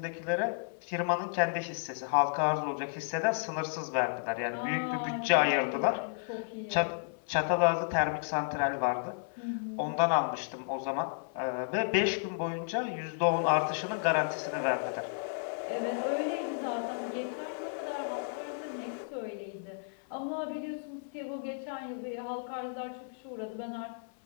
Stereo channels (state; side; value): silent; right; 56 dB below the other